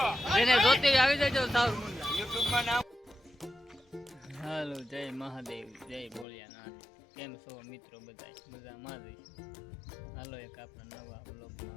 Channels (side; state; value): right; drops out; at 6.2 s